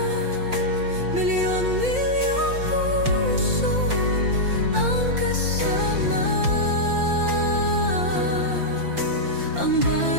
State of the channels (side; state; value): left; late; 5.8 ms